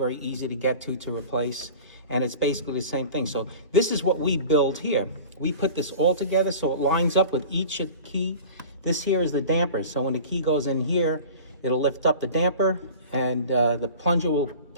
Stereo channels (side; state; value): both; inverted; correlation -0.39